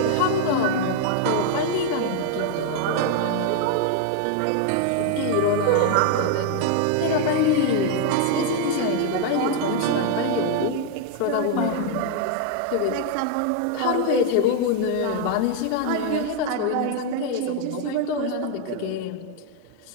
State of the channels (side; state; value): both; different; correlation 0.00